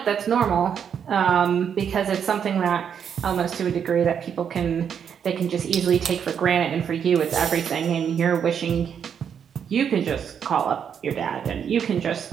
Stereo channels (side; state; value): left; quieter; 7.8 dB